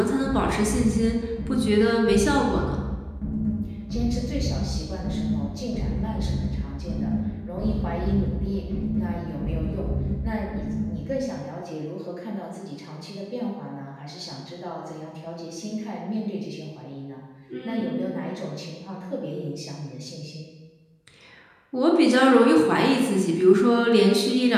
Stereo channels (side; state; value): both; identical; correlation 1.00